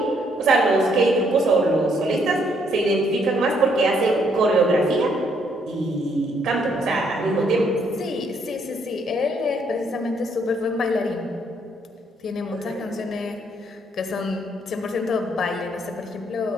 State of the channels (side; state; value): both; normal; correlation 0.70